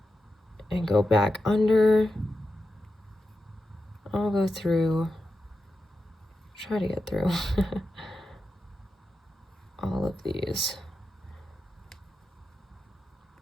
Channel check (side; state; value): both; normal; correlation 0.89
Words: and go back under. I'll go through, try to get through all of these.